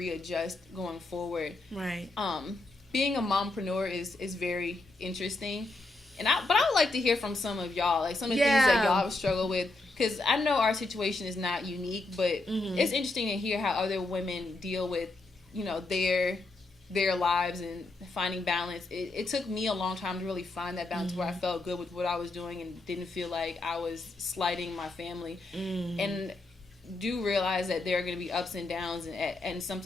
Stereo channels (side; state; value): right; quieter; 3.0 dB